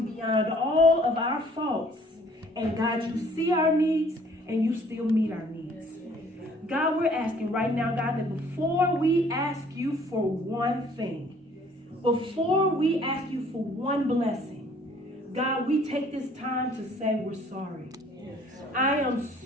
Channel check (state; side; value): normal; both; correlation 0.57